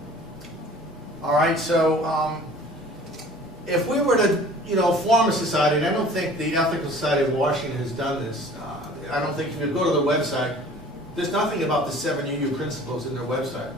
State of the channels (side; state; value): both; normal; correlation 0.47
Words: All right, so if we were to, form a society, and I don't think the Ethical Society of Washington has done this. I don't think if you go to the website, there's nothing about the 7 UU principles in their website.